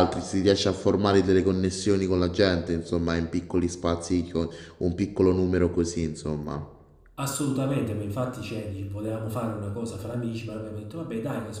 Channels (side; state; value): both; identical; correlation 1.00